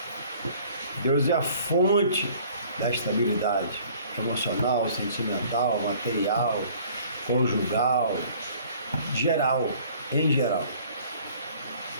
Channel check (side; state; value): both; inverted; correlation -0.53